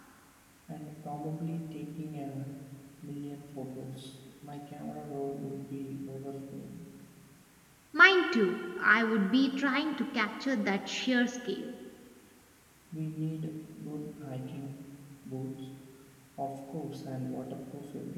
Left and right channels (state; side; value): identical; both; correlation 1.00